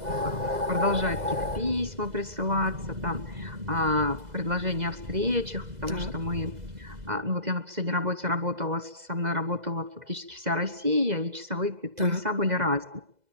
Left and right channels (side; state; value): left; late; 2.0 ms